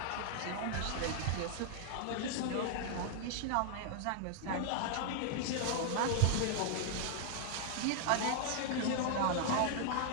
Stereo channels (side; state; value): both; different; correlation 0.00